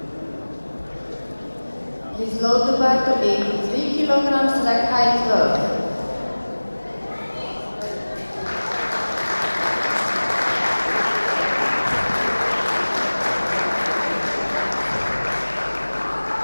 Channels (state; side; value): inverted; both; correlation -1.00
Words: Please load the bar to 83 kilograms, rack height 12.